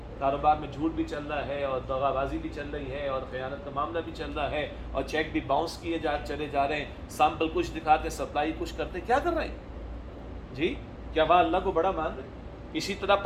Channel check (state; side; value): identical; both; correlation 1.00